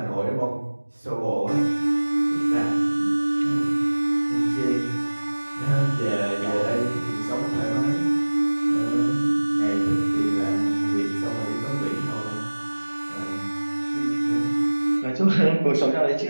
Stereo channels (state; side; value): inverted; both; correlation -1.00